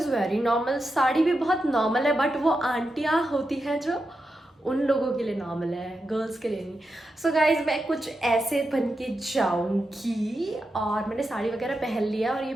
very normal, sari भी बहुत नॉर्मल है, बट वो आंटियाँ होती हैं जो उन लोगों के लिए नॉर्मल है, गर्ल्स के लिए नहीं। सो गाइज मैं कुछ ऐसे बन के जाऊँगी और मैंने साड़ी वगैरह पहन लिया और ये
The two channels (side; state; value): both; normal; correlation 0.88